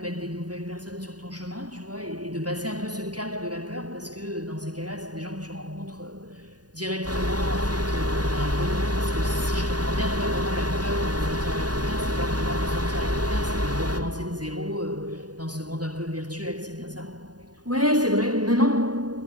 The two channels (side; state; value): left; late; 0.69 ms